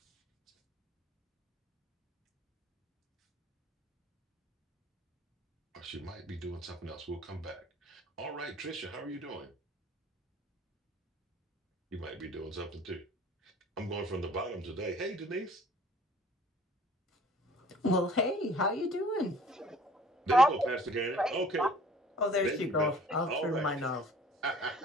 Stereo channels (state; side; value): normal; both; correlation 0.51